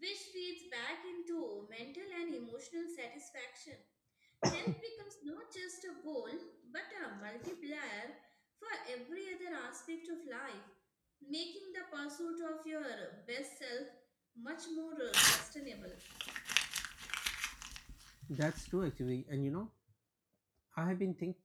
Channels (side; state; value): both; identical; correlation 1.00